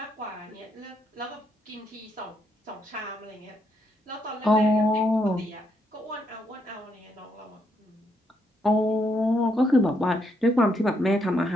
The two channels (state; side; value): normal; both; correlation 0.76